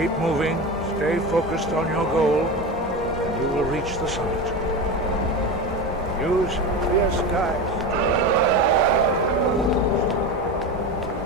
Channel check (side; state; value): both; normal; correlation 0.23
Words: moving, stay focused on your goal, and you will reach the summit. Use clear skies.